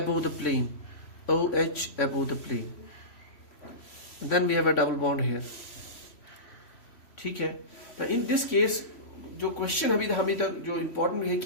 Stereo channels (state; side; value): late; right; 3.1 ms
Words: the plane, OH above the plane. And then we have a double bond here. ठीक है. Now in this case, जो question अभी हमें तक जो important है